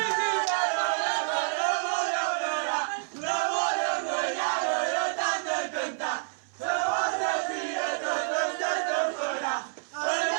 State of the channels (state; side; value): silent; left; 59 dB below the other